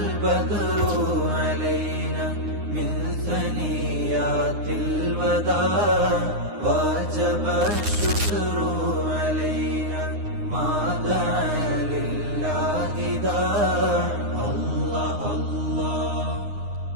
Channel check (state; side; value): late; left; 9.7 ms